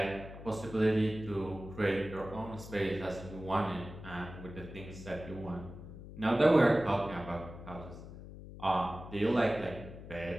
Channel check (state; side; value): noise; left; hum, 13 dB below the sound